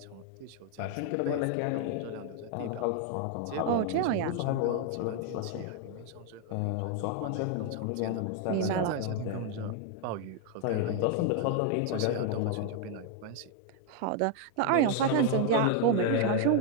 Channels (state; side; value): different; both; correlation 0.01